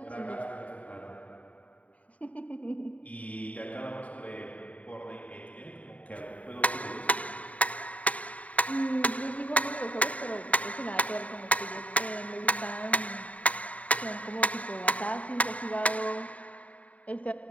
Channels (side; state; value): right; late; 0.068 ms